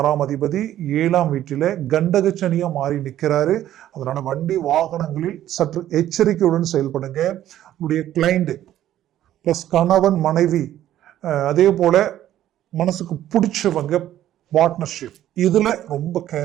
அதிபதி 7ஆம் வீட்டில கண்டக சனியா மாறி நிற்கிறாரு. அதனால வண்டி வாகனங்களில் சற்று எச்சரிக்கையுடன் செயல்படுங்க. உங்களுடைய கிளைண்ட் பிளஸ் கணவன் மனைவி, அதே போல மனசுக்கு பிடிச்சவங்க, பார்ட்னர்ஷிப், இதுல ரொம்ப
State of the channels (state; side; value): quieter; left; 12.4 dB